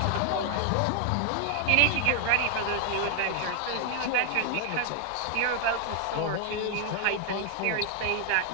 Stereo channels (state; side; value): different; both; correlation 0.00